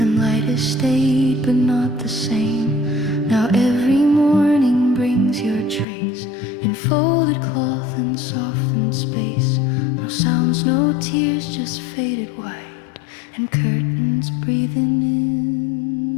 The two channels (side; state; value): right; drops out; at 5.9 s